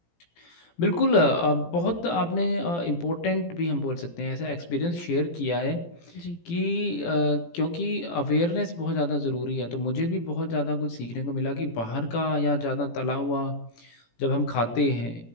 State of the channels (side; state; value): right; late; 17 ms